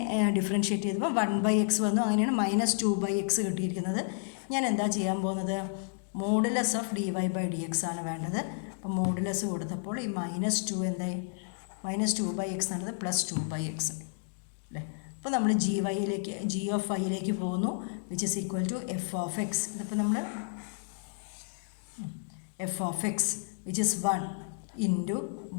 ഡിഫറൻഷ്യേറ്റ് ചെയ്തപ്പോൾ 1/x വന്നു. അങ്ങനെയാണ് -2/x കിട്ടിയിരിക്കുന്നത്. ഞാൻ എന്താ ചെയ്യാൻ പോകുന്നത്? Modulus of dy by dx ആണ് വേണ്ടത്. അപ്പോൾ മോഡുലസ് കൊടുത്തപ്പോൾ ഈ -2 എന്തായി? -2/x എന്നത് +2/x അല്ലേ? അപ്പോൾ നമ്മൾ g of y പോകുന്നു, which is equal to f of x. ഇതിപ്പോൾ നമ്മൾ f of x which is 1 into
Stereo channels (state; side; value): silent; right; digital silence